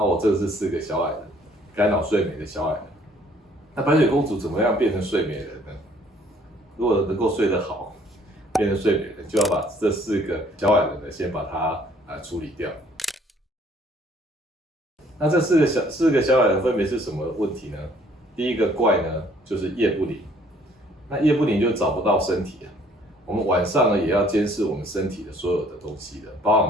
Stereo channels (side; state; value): both; normal; correlation 0.60